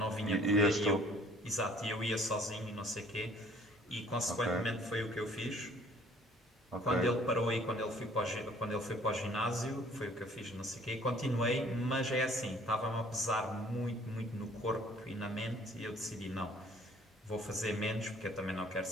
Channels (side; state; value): both; normal; correlation 0.56